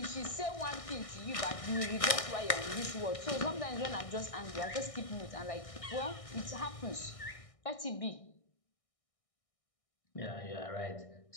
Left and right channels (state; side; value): late; right; 1.6 ms